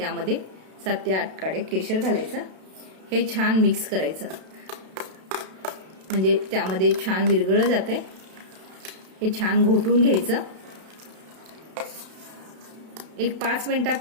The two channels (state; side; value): late; left; 32 ms